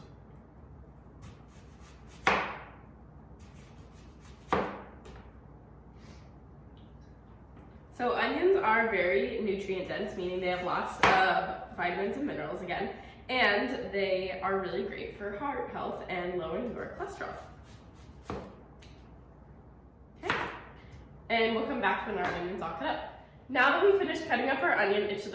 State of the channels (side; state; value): both; identical; correlation 1.00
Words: So onions are very nutrient dense, meaning they have lots of vitamins and minerals again, and they are really great for heart health and lowering your cholesterol. Okay, and we'll come back when our onion's all cut up. Now that we finished cutting up our onion, it should